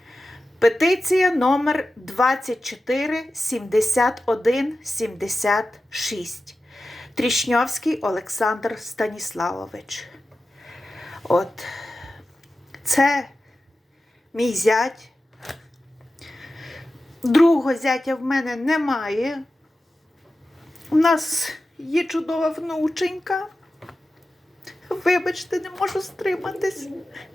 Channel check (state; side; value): normal; both; correlation 0.93